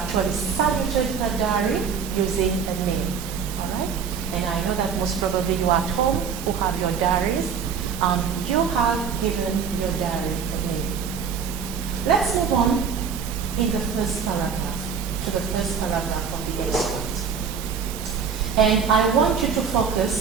saluted her diary using a name, all right? And I know that most probably you at home who have your diaries, you have given your diary a name. Let's move on in the first paragraph, to the first paragraph of the extract. And I want you to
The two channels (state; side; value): quieter; left; 6.6 dB